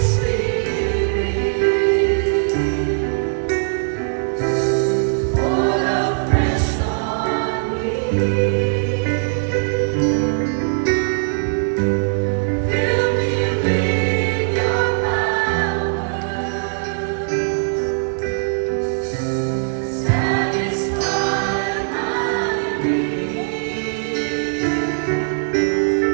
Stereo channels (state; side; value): silent; left; digital silence